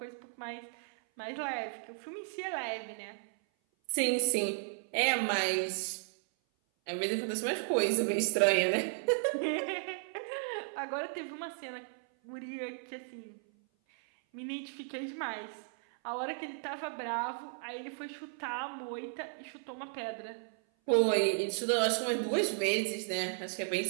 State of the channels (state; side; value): silent; left; 55 dB below the other